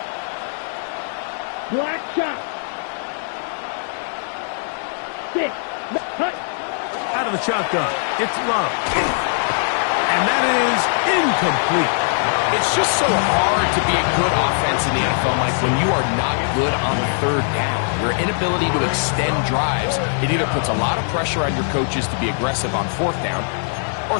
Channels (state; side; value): silent; right; 65 dB below the other